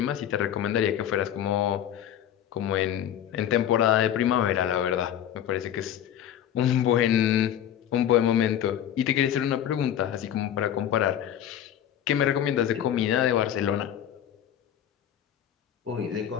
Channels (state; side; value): quieter; right; 10.4 dB